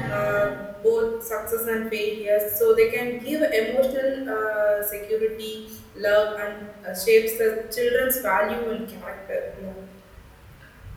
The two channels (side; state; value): both; identical; correlation 1.00